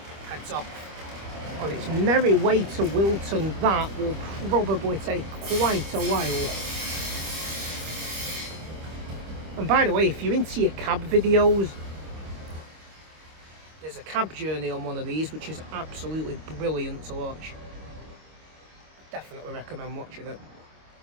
heads off on its merry way to Wilton. That will probably take quite a while. And by the way, if you're into your cab videos, there's a cab journey on one of these which is absolutely brilliant to watch. Definitely recommend watching it.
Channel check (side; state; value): left; late; 25 ms